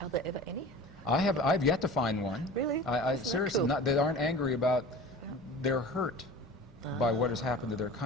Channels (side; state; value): both; normal; correlation 0.38